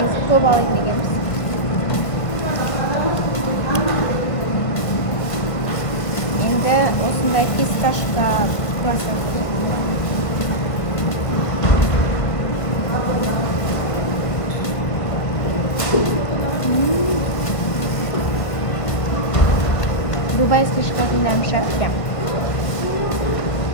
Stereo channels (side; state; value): right; late; 1.5 ms